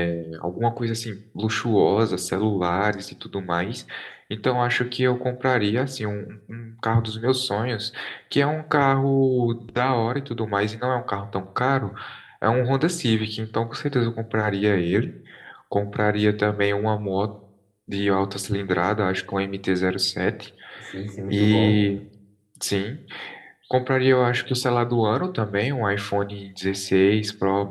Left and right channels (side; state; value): both; identical; correlation 1.00